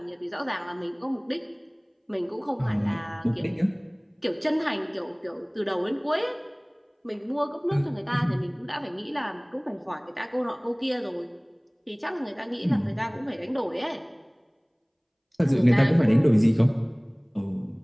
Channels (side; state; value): both; identical; correlation 1.00